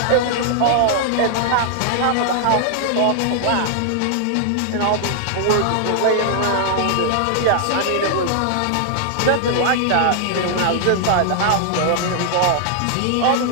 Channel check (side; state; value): both; different; correlation -0.01